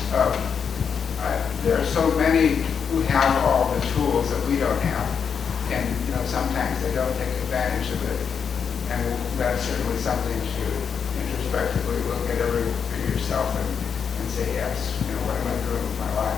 there are so many who have all the tools that we don't have, and sometimes they don't take advantage of it, and that's certainly something to introspectively look at yourself and say, yes, what am I doing with my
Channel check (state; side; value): quieter; right; 6.8 dB